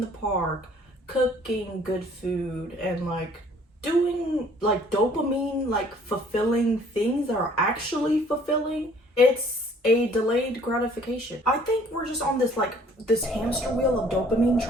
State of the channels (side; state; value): both; normal; correlation 0.57